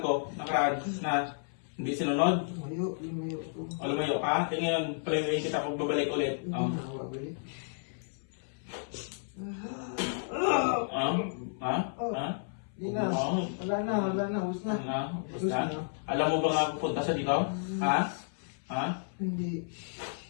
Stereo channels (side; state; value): right; silent; 56 dB below the other